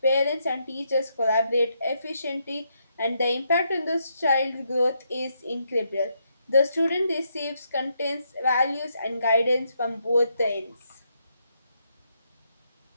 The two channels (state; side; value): inverted; both; correlation -0.78